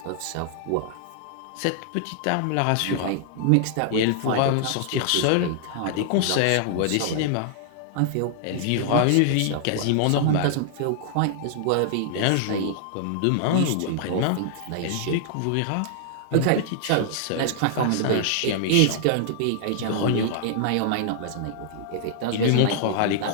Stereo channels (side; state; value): both; different; correlation -0.01